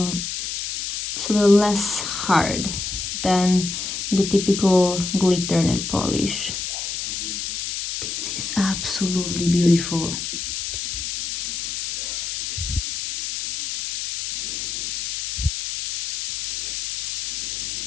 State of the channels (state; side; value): noise; left; hiss, 4 dB below the sound